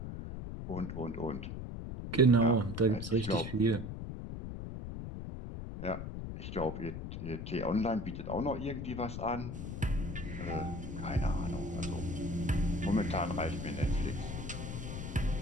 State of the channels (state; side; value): noise; left; rumble, 6 dB below the sound